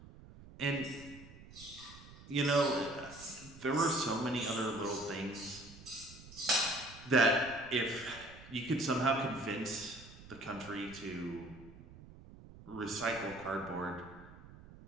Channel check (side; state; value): right; noise; rumble, 18 dB below the sound